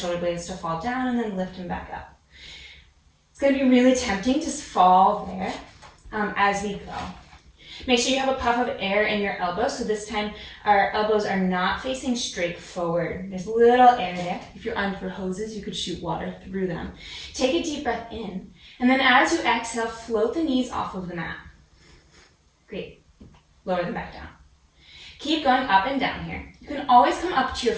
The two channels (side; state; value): both; identical; correlation 1.00